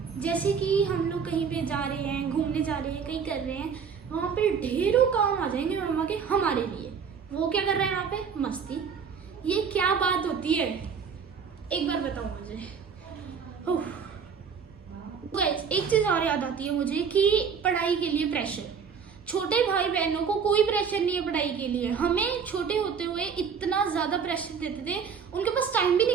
जैसे कि हम लोग कहीं पे जा रहे हैं, घूमने जा रहे हैं, कहीं कर रहे हैं, वहाँ पे ढेरों काम आ जाएंगे मम्मा के हमारे लिए। वो क्या कर रहे हैं वहाँ पे? मस्ती। ये क्या बात होती है, एक बार बताओ मुझे। गाइस, एक चीज और याद आती है मुझे कि पढ़ाई के लिए प्रेशर। छोटे भाई बहनों को कोई प्रेशर नहीं है पढ़ाई के लिए। हमें छोटे होते हुए इतना ज्यादा प्रेशर देते थे, उनके पास टाइम भी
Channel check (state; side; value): quieter; left; 6.4 dB